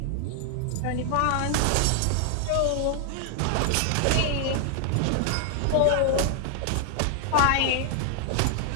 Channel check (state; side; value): different; both; correlation 0.00